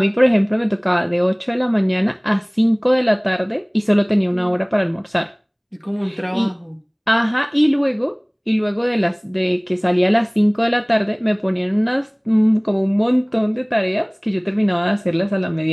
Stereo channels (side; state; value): both; identical; correlation 1.00